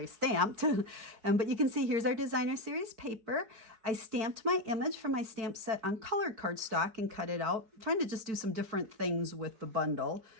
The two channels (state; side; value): late; left; 4.6 ms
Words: stamped. But you can see here's our designer series paper. I stamped my image from my stamp set on colored cardstock and cut it out. I'm trying to just do some different things with the bundle